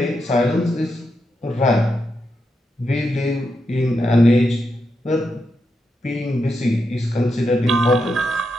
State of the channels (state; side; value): normal; both; correlation 0.84